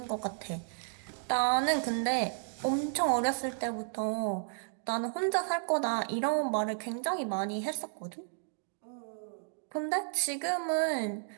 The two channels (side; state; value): left; silent; digital silence